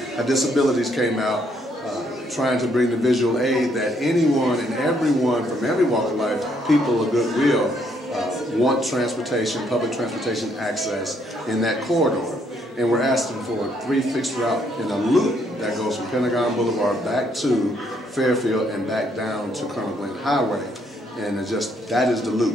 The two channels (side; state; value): both; normal; correlation 0.71